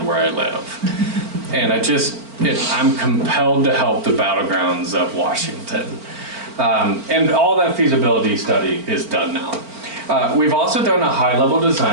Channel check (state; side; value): late; left; 4.4 ms